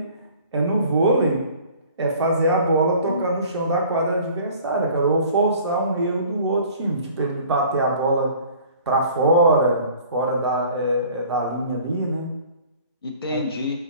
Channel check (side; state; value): both; inverted; correlation -0.50